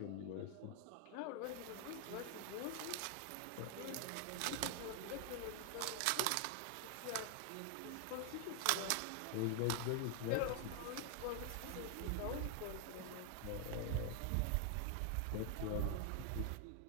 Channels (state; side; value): different; both; correlation 0.00